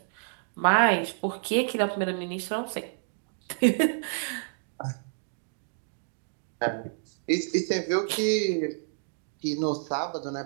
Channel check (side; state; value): left; silent; digital silence